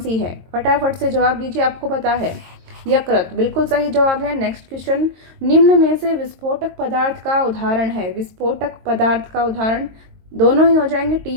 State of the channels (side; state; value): left; late; 22 ms